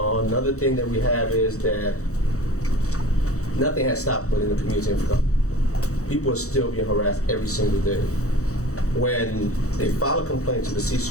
thing that we have is that nothing has stopped within the community info. People are still being harassed every single day. When they file a complaint to the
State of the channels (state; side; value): late; right; 0.65 ms